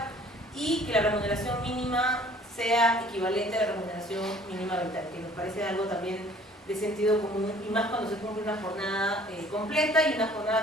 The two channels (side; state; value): both; normal; correlation 0.53